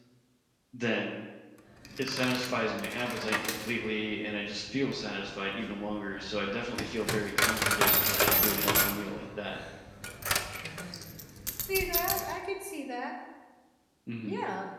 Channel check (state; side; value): identical; both; correlation 1.00